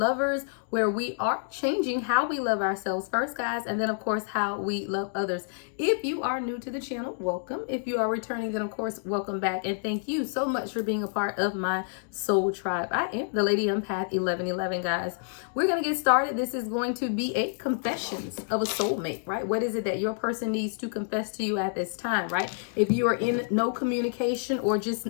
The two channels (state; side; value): silent; right; digital silence